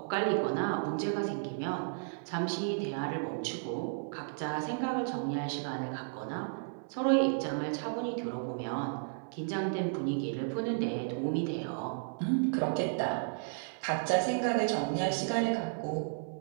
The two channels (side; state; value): left; silent; 56 dB below the other